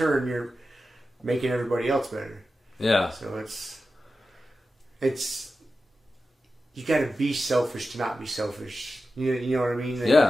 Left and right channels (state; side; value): normal; both; correlation 0.92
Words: you're making everybody else better. Yeah. So it's you got to be selfish to not be selfish. You know what I mean?